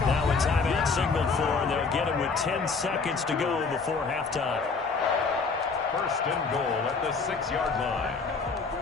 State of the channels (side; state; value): right; quieter; 4.7 dB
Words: Now a timeout signaled for, and they'll get it with 10 seconds to go before halftime. First and goal at the 6-yard line.